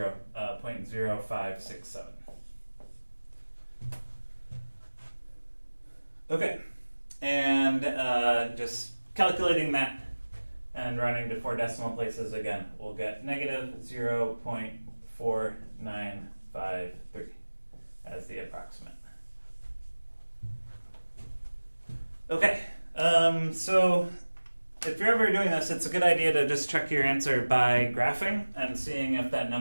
0.0567. Okay, and just calculating that and rounding to 4 decimal places again, we'll get negative 0.4953 as the approximate. Okay, so if you're ever doing this, it's a good idea to just check your answer by graphing and seeing if that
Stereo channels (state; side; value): inverted; both; correlation -1.00